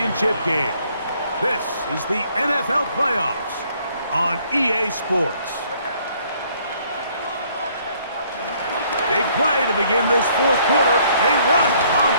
game. This is the NFL playoffs on EA Sports. Big play to begin this fourth quarter. They run on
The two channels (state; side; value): inverted; both; correlation -0.63